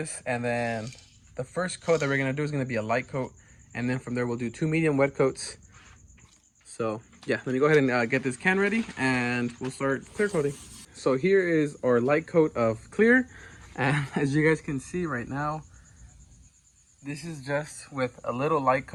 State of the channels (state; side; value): identical; both; correlation 1.00